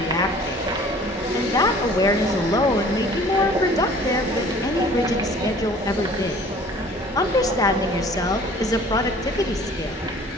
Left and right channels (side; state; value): both; normal; correlation 0.50